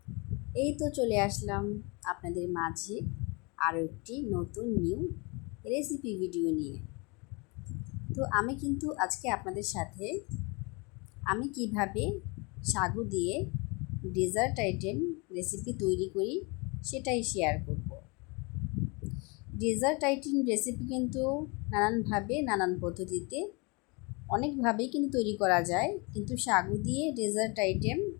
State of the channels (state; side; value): quieter; right; 29.6 dB